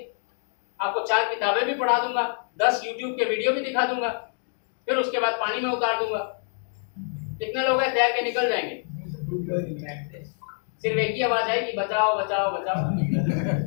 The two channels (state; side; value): silent; right; 57 dB below the other